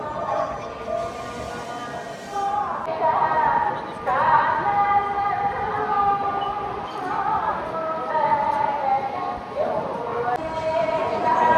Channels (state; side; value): identical; both; correlation 1.00